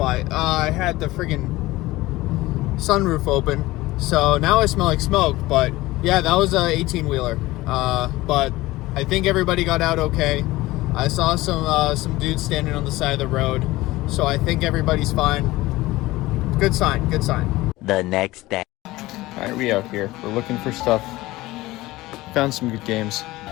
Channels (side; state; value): right; quieter; 18.6 dB